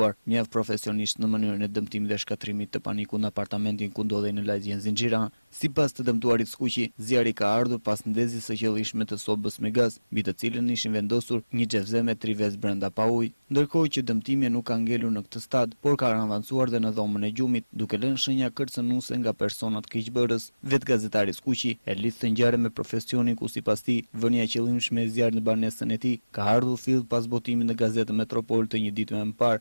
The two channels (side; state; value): both; inverted; correlation -1.00